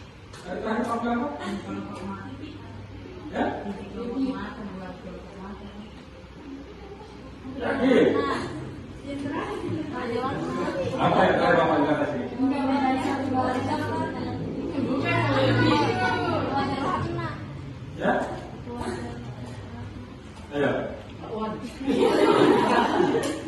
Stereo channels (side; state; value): both; identical; correlation 1.00